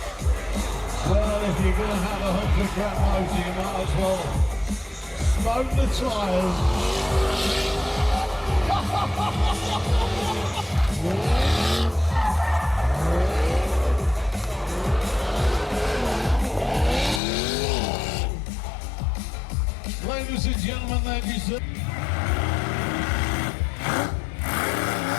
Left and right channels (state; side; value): drops out; right; at 17.2 s